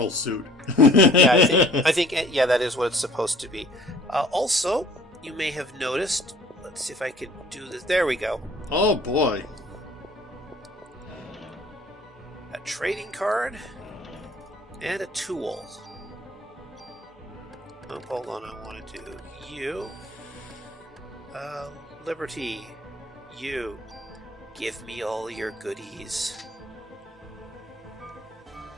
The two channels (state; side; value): normal; both; correlation 0.53